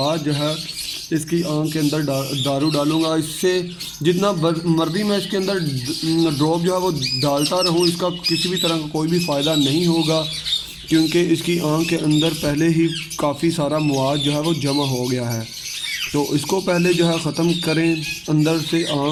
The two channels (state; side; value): identical; both; correlation 1.00